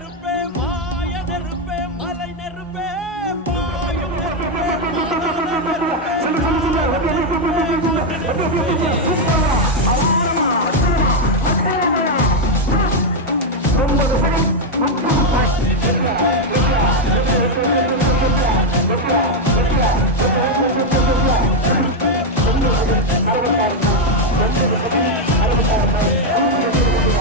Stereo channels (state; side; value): normal; both; correlation 0.03